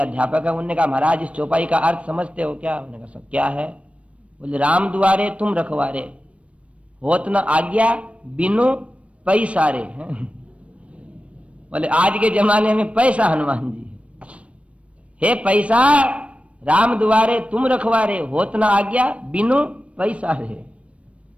है, उन्होंने कहा महाराज इस चौपाई का अर्थ समझते हो क्या? उन्होंने कहा सब क्या है? बोले राम दुआरे तुम रखवारे, होत न आज्ञा बिनु पैसारे। बोले आज के जमाने में पैसा हनुमान जी है, पैसा राम दुआरे तुम रखवारे, होत न आज्ञा बिनु पैसारे।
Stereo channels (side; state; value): left; late; 0.062 ms